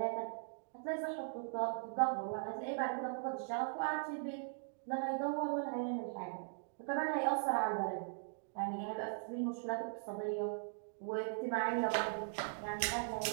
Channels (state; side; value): silent; left; digital silence